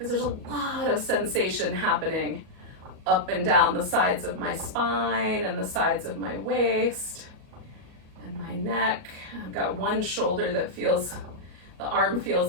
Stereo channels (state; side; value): late; left; 38 ms